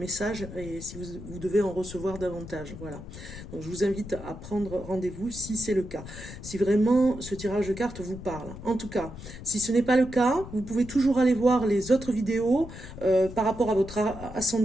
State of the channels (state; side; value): noise; left; rumble, 12 dB below the sound